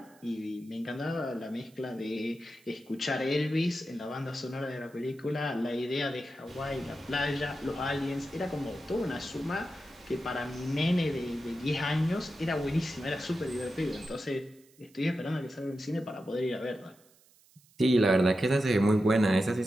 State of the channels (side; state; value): right; noise; hiss, 29 dB below the sound